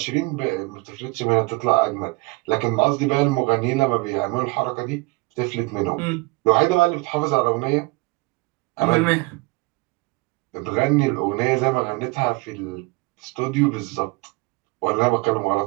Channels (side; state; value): left; quieter; 25.4 dB